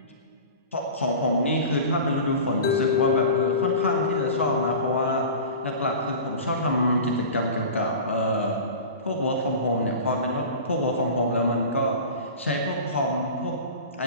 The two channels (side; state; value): both; inverted; correlation -0.34